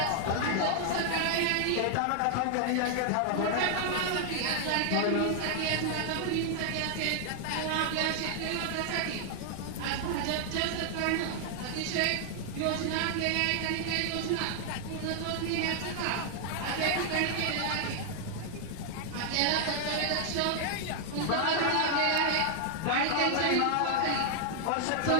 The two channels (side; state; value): both; different; correlation 0.00